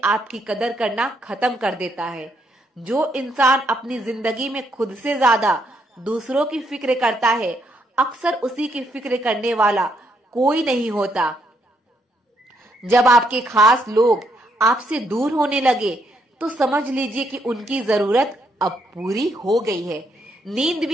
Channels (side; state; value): both; normal; correlation 0.75